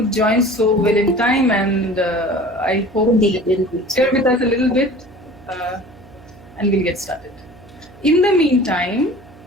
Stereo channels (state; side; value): noise; right; hum, 23 dB below the sound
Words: join so well in time, and I hope Indeed. share with us a little bit, and we'll get started. In the meantime,